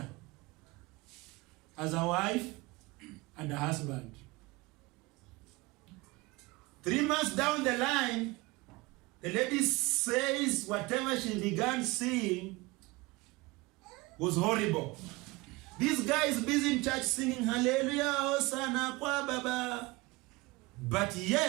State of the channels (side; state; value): left; quieter; 22.9 dB